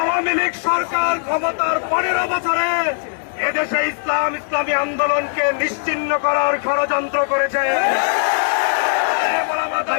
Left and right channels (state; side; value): silent; right; digital silence